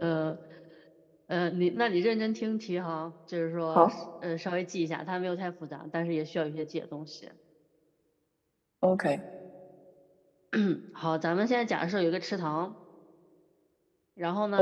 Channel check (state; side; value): identical; both; correlation 1.00